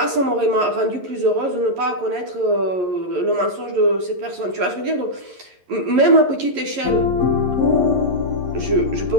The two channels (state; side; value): late; left; 11 ms